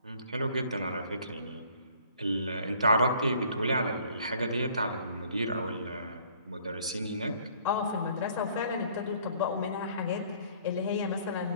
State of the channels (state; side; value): inverted; both; correlation -0.58